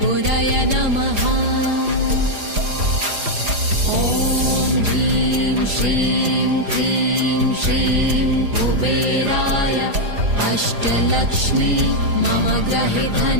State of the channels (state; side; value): late; left; 4.9 ms